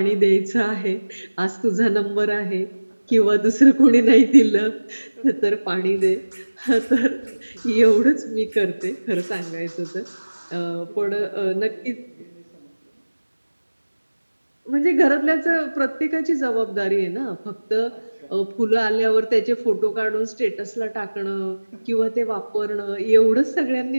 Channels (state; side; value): inverted; both; correlation -1.00